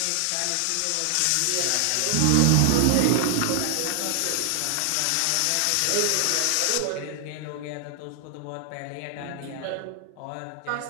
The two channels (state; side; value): different; both; correlation 0.00